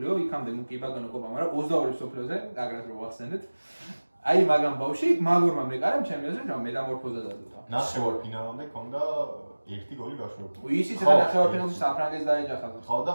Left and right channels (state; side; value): inverted; both; correlation -1.00